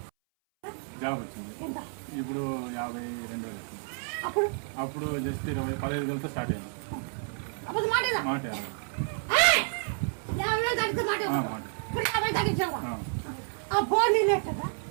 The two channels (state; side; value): silent; left; 58 dB below the other